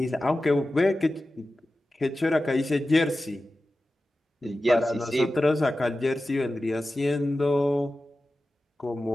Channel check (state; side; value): normal; both; correlation 0.94